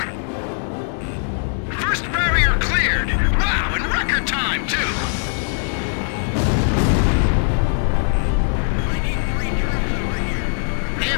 First barrier cleared! Wow, in record time, too! I need 3 troops over here. They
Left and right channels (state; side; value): silent; right; digital silence